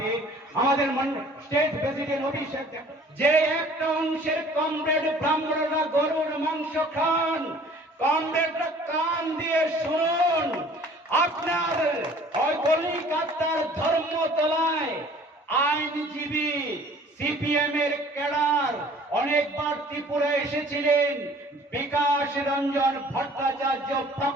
আমাদের স্টেট প্রেসিডেন্ট অভিষেক, যে একটা অংশের কমরেড ব্রাহ্মণরা গরুর মাংস খান, কমরেডরা কান দিয়ে শুনুন, আপনার কলিকাতার ধর্মতলায় আইনজীবী সিপিএম এর ক্যাডার অনেকবার ত্রিপুরা এসেছিলেন, বিকাশ রঞ্জন ভট্টাচার্য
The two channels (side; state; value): both; normal; correlation 0.51